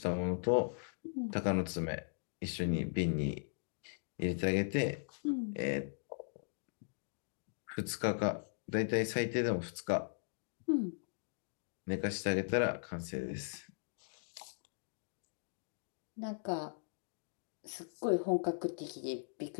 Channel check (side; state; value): right; silent; digital silence